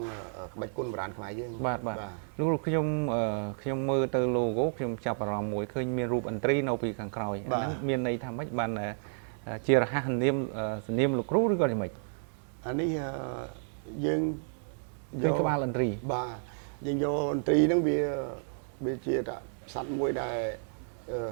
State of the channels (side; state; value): left; silent; digital silence